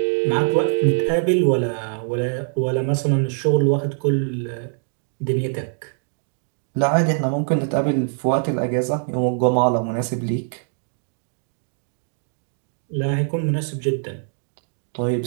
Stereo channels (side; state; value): left; silent; digital silence